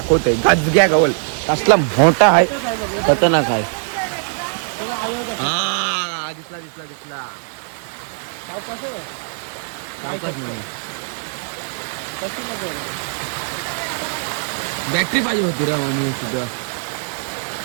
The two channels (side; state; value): left; silent; digital silence